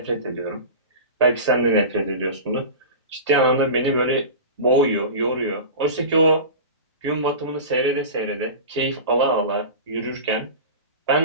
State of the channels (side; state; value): both; inverted; correlation -0.30